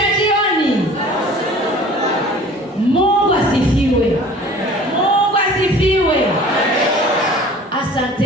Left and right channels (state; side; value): normal; both; correlation 0.46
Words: jioni. Mungu asifiwe. Mungu asifiwe.